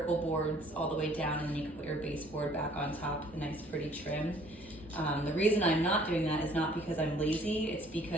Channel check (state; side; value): normal; both; correlation 0.57